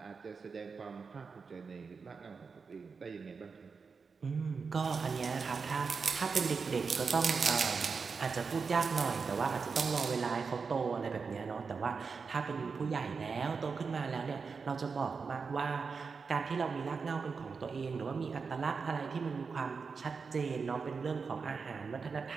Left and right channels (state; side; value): quieter; left; 5.1 dB